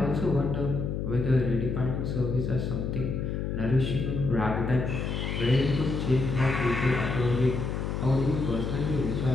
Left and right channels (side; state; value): left; noise; hum, 2 dB below the sound